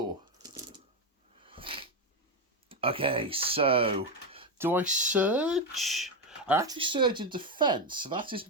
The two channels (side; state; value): both; normal; correlation 0.08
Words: Okay, so do I surge? I actually surge in defense, so that